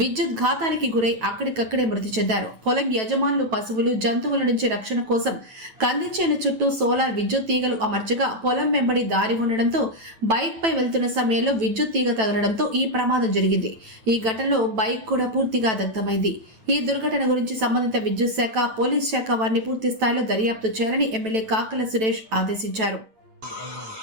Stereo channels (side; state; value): left; late; 9.1 ms